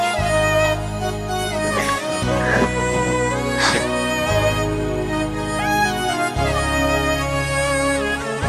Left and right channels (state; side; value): identical; both; correlation 1.00